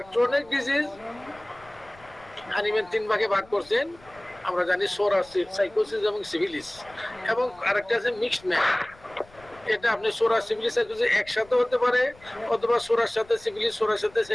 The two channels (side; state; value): left; noise; rumble, 25 dB below the sound